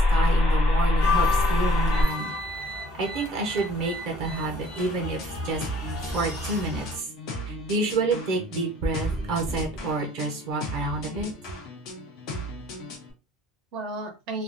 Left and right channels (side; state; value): both; normal; correlation 0.56